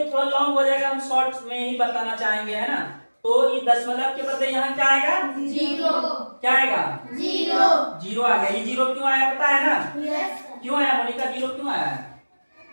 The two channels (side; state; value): both; inverted; correlation -1.00